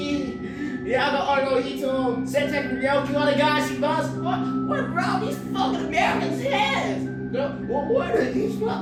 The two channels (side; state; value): both; identical; correlation 1.00